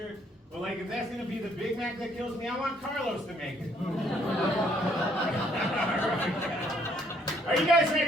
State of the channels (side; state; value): both; normal; correlation 0.66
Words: but like if that's gonna be the Big Mac that kills me, I want Carlos to make it. Are you guys